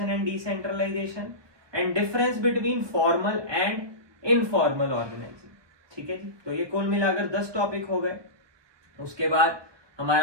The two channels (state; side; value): late; left; 1.2 ms